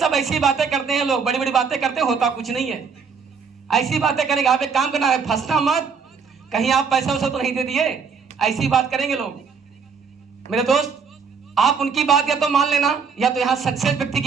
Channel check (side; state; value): left; quieter; 5.8 dB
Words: ऐसी बातें करते हैं लोग, बड़ी बड़ी बातें करते हैं, होता कुछ नहीं है। ऐसी बातें करेंगे, आप एक काम करना है, फंसना मत, कहीं आप पैसा वैसा तो नहीं दे दिए, ऐसी बात करेंगे लोग। मेरे दोस्त, आप उनकी बात या तो मान लेना या तो यहाँ सक्सेस व्यक्ति